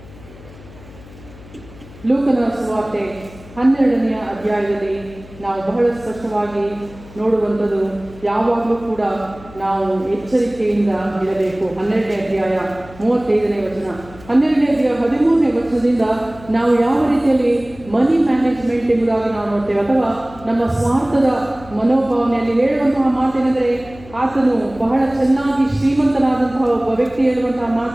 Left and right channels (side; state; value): left; noise; hum, 20 dB below the sound